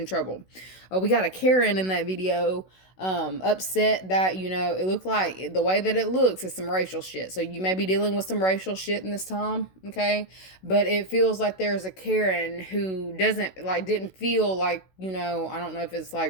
trouble. We got a Karen in that video, upset that it looked like the way that it looks is some racial shit. So you may be dealing with some racial shit in this time, okay? But it feels like there's a Karen who didn't feel like I don't know if it's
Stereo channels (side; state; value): right; late; 16 ms